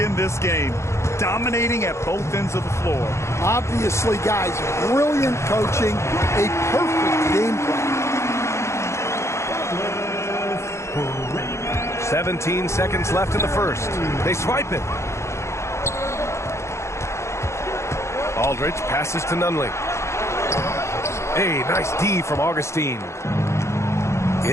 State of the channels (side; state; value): right; late; 0.13 ms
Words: this game. Dominating at both ends of the floor. Obviously, guys, brilliant coaching, a perfect game plan. 17 seconds left in the first. They swipe it. Aldridge passes to Nunley. Hey, nice D from Augustine.